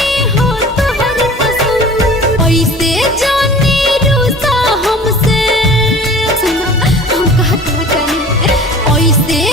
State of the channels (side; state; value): both; normal; correlation 0.43